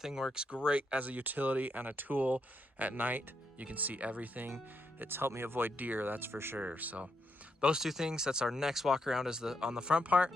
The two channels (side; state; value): both; normal; correlation 0.80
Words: works great as a utility and a tool at night. You can see everything. It's helped me avoid deer, that's for sure. So those two things, that's our next walk around is on the front part.